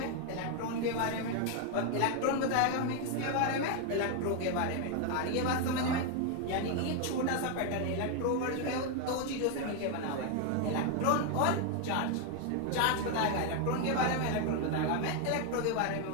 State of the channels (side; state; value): both; different; correlation 0.01